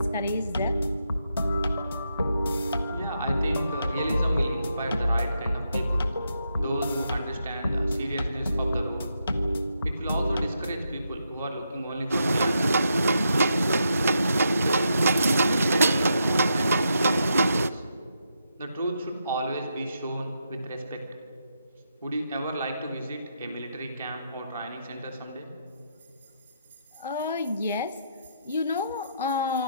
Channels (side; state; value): both; inverted; correlation -0.81